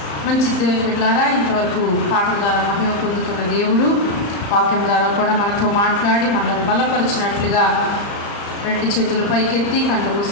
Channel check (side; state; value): right; late; 35 ms